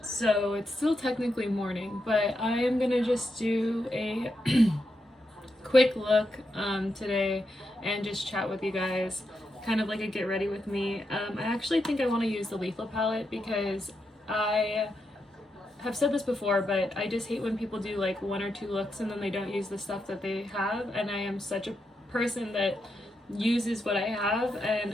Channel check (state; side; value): normal; both; correlation 0.84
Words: so it's still technically morning, but I am gonna just do a quick look today and just chat with you guys, kind of like a get ready with me. I actually think I want to use the Lethal palette because I have said this before, but I just hate when people do like one or two looks and then they don't use the stuff that they have, and I am such a person that uses what I have, and